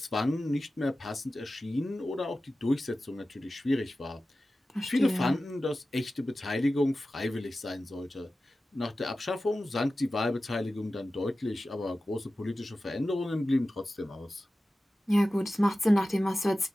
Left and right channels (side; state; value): both; normal; correlation 0.94